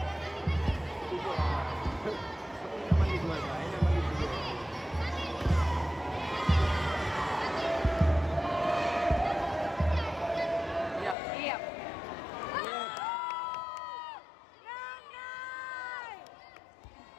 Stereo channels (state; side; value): drops out; right; at 11.2 s